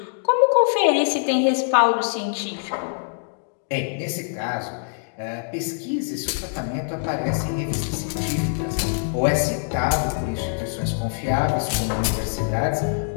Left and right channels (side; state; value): right; silent; digital silence